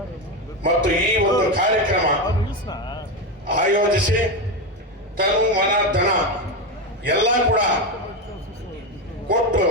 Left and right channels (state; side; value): normal; both; correlation 0.14